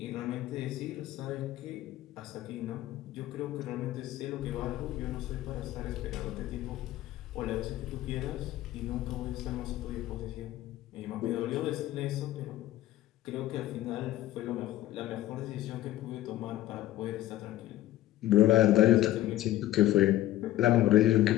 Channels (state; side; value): quieter; right; 14.4 dB